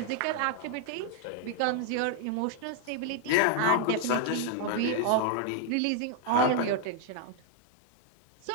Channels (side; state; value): both; different; correlation 0.00